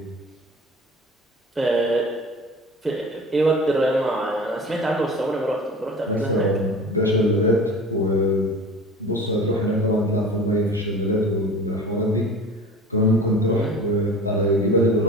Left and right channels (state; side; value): normal; both; correlation 0.39